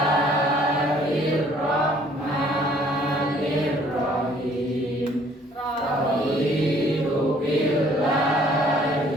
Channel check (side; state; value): both; normal; correlation 0.59